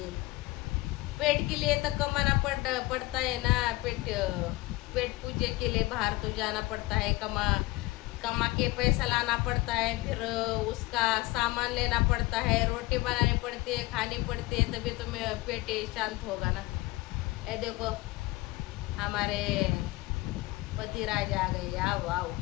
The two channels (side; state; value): right; quieter; 20.8 dB